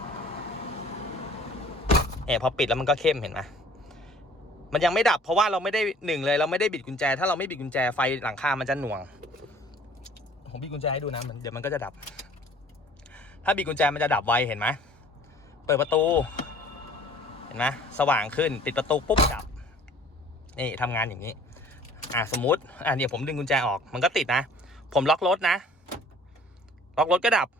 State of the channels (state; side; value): normal; both; correlation 0.51